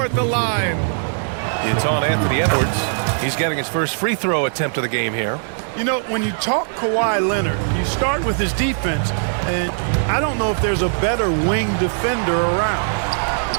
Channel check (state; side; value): silent; left; digital silence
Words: at the line. It's on Anthony Edwards. He's getting his first free throw attempt of the game here. You know, when you talk Kawhi Leonard, you start with his defense, and I don't know if there's a better wing defender around.